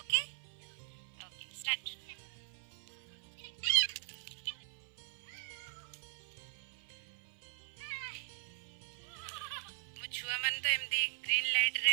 ଓକେ ଓକେ ଷ୍ଟାର୍ଟ। ମୋ ଛୁଆ ମାନେ ତ ଏମିତି ଗ୍ରୀନ୍ ଲାଇଟ୍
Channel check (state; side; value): silent; left; 51 dB below the other